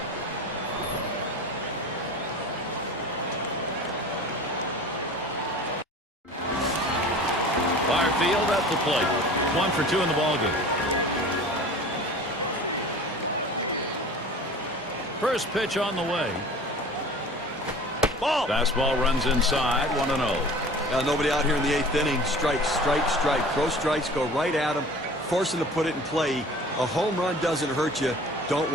Far field at the plate. 1 for 2 in the ballgame. First pitch on the way. Ball. Fastball runs inside. 1-0. Nobody out here in the 8th inning. Strike, strike, strike. Throw strikes, go right at him, force him to put it in play. A home run doesn't hurt you. Don't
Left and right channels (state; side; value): normal; both; correlation 0.41